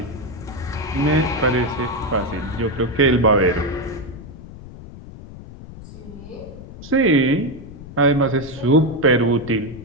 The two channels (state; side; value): noise; left; rumble, 15 dB below the sound